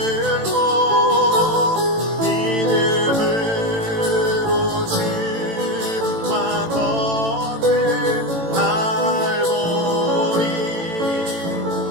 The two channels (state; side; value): late; left; 18 ms